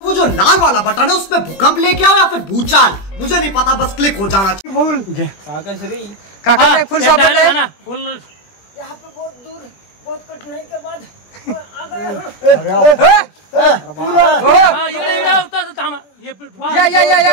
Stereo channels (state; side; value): late; right; 20 ms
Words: वो जो लाल वाला बटन है उसमें भूकंप लेके आओ या फिर भूचाल, मुझे नहीं पता, बस क्लिक हो जाना चाहिए. काका फुल सापडला है ना. फुल यहाँ पे बहुत दूर बहुत कठिनाई के बाद आ गया हूँ. या